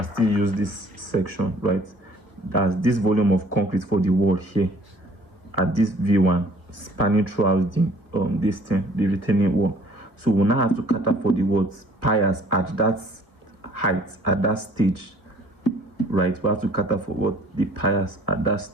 still use this section, right? That's this volume of concrete for the wall here at this V1 spanning throughout the retaining wall. So we now have to cut up for the piers at that height, at that stage, right? We have to cut up for the piers at that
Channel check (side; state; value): left; late; 1.5 ms